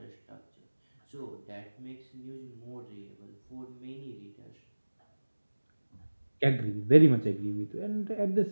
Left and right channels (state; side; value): inverted; both; correlation -1.00